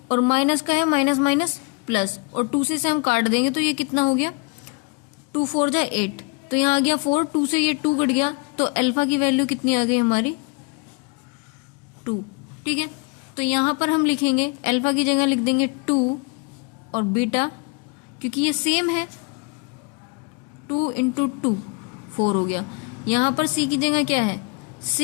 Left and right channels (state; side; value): quieter; right; 32.0 dB